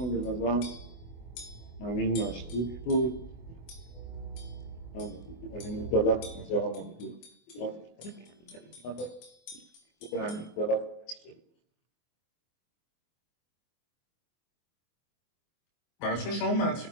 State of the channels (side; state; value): right; late; 24 ms